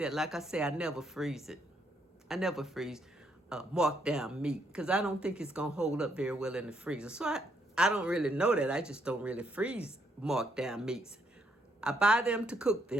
like I say, I never freeze it. I never freeze marked down meat because I don't think it's going to hold up very well in the freezer. So I don't really know that. I just don't really freeze marked down meats. I buy them to cook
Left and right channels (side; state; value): both; normal; correlation 0.73